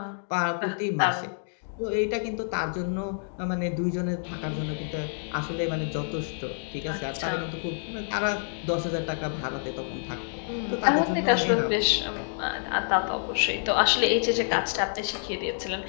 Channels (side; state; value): right; silent; digital silence